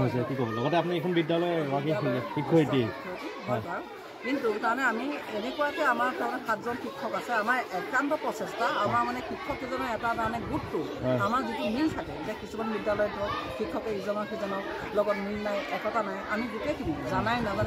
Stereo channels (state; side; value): identical; both; correlation 1.00